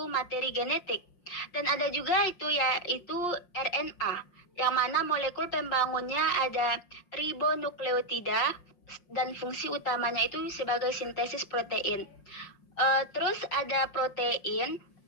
materi genetik. Dan ada juga yaitu RNA, yang mana molekul pembangunnya ada ribonukleotida dan fungsi utamanya itu sebagai sintesis protein. Terus ada protein,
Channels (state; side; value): late; right; 5.6 ms